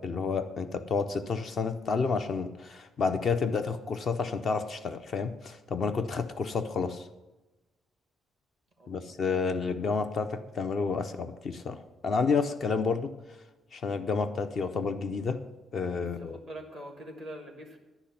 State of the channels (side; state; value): right; quieter; 4.5 dB